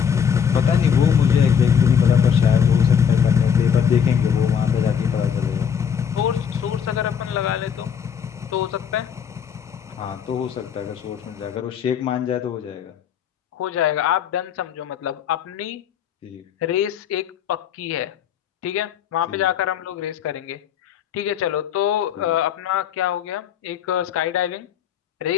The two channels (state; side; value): quieter; right; 7.8 dB